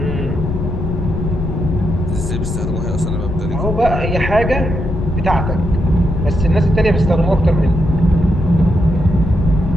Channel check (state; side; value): noise; left; rumble, 3 dB below the sound